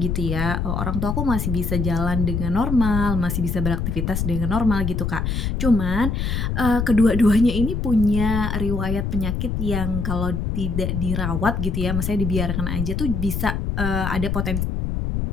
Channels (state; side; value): noise; left; rumble, 1 dB below the sound